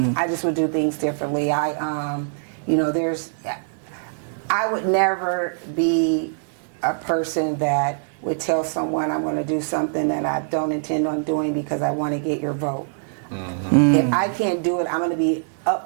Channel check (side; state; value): left; silent; digital silence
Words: just would do things differently. I would never be a person that would tell someone I'm going to do something that I don't intend on doing because I want to get your vote. If I can't do it, I'm going to be